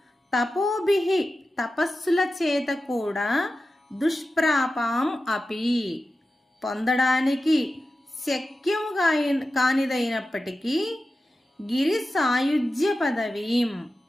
తపోభిః తపస్సుల చేత కూడా, దుష్ప్రాపాం అపి పొందడానికి శక్యం కానిదైనప్పటికీ, గిరి సాయుజ్య పదవీం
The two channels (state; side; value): normal; both; correlation 0.93